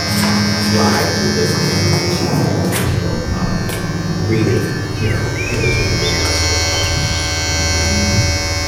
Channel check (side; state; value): both; identical; correlation 1.00